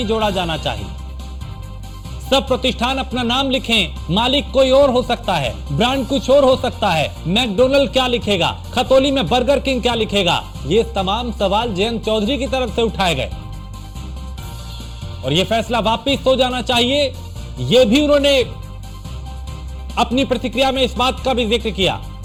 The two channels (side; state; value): both; identical; correlation 1.00